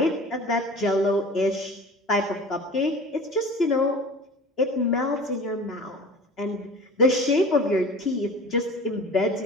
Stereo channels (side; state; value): both; normal; correlation 0.39